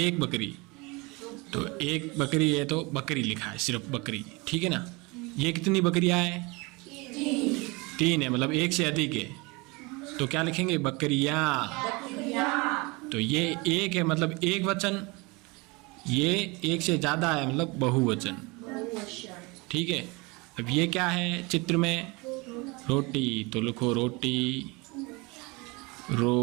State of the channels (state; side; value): quieter; left; 26.2 dB